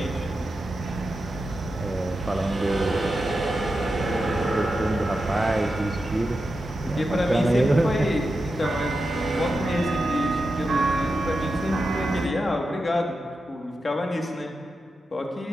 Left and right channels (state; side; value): normal; both; correlation 0.89